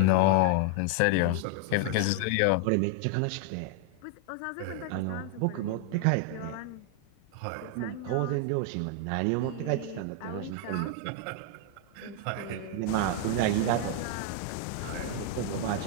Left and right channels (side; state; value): both; different; correlation 0.00